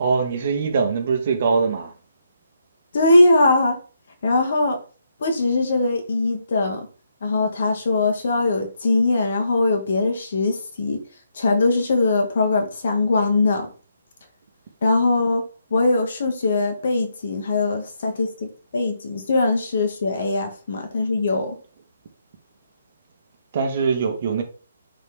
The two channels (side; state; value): both; inverted; correlation -0.78